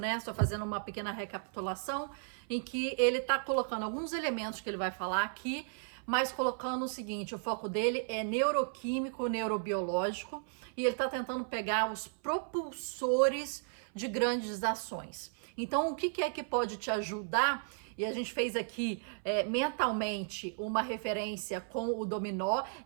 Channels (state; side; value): silent; left; 55 dB below the other